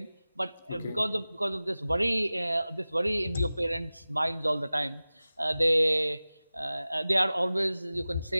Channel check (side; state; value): both; inverted; correlation -0.97